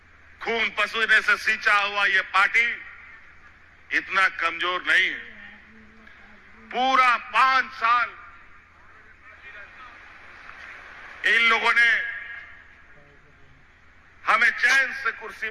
खून पसीने से सींचा हुआ ये पार्टी इतना कमजोर नहीं है। पूरा 5 साल इन लोगों ने कुर्सी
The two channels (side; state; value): both; identical; correlation 1.00